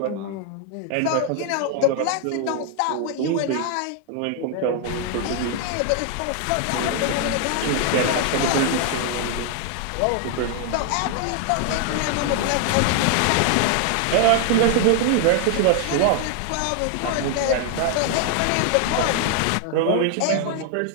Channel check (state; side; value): different; both; correlation 0.00